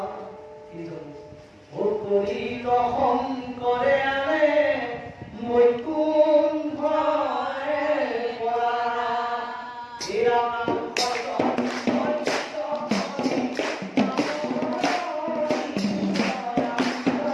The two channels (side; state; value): both; identical; correlation 1.00